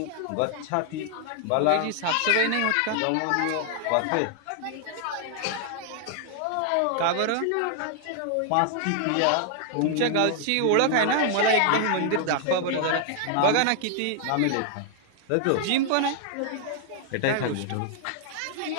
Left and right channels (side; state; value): both; different; correlation 0.00